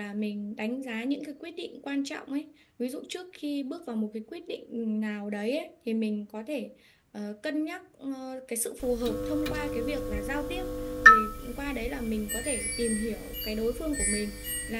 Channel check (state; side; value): identical; both; correlation 1.00